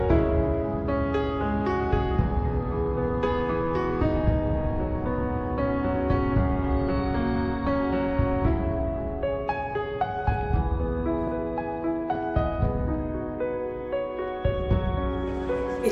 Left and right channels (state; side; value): identical; both; correlation 1.00